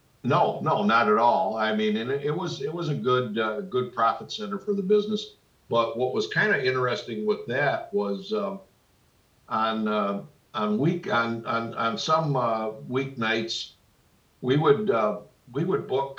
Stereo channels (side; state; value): both; identical; correlation 1.00